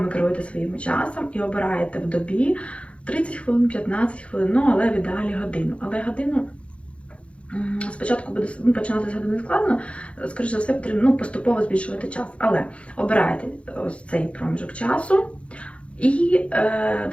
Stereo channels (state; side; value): late; right; 0.061 ms